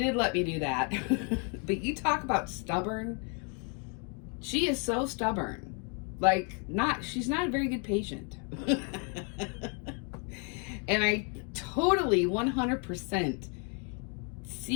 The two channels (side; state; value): right; quieter; 37.7 dB